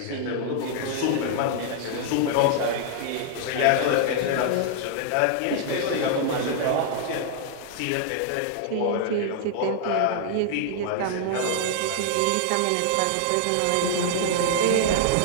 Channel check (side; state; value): both; different; correlation -0.01